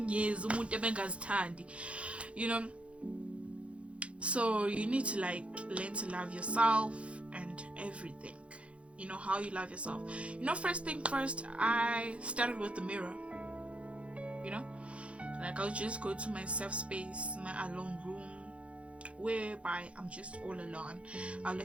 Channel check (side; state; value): left; late; 0.061 ms